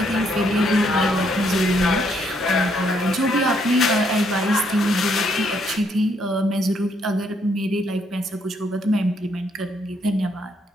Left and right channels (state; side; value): normal; both; correlation 0.72